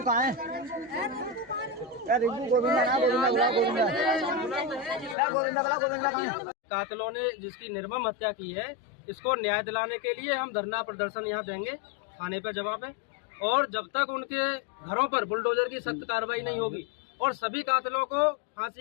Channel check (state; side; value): drops out; right; at 5.2 s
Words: कहाँ है? रिंकू गोविंदा ना, गोविंदा बुला, गोविंदा बुला, गोविंदा कहाँ है? कातिलों ने जिसकी निर्मम हत्या की है, इसको न्याय दिलाने के लिए हम धरना प्रदर्शन यहाँ देंगे, थाने पे जवाब है। और जब तक उनके घरों पर बुलडोजर की सख्त कार्रवाई नहीं होगी और सभी कातिलों को